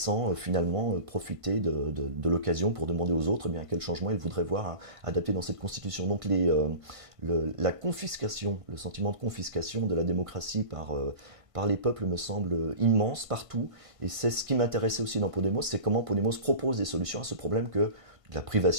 finalement profiter de l'occasion pour demander aux autres quel changement ils voudraient voir adapté dans cette constitution. Donc la confiscation, le sentiment de confiscation de la démocratie par les peuples me semble immense partout, et c'est ce qui m'intéressait aussi dans Podemos, c'est comment Podemos propose des solutions à ce problème de la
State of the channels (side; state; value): left; late; 1.5 ms